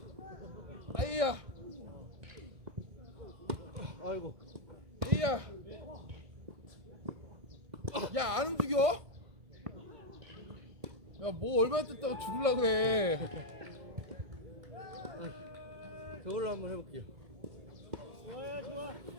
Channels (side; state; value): left; late; 1.6 ms